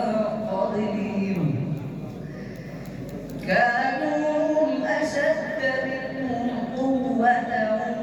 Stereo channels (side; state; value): both; identical; correlation 1.00